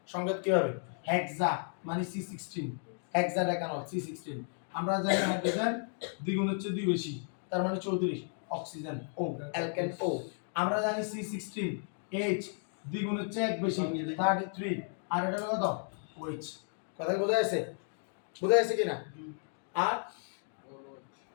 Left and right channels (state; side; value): silent; right; 55 dB below the other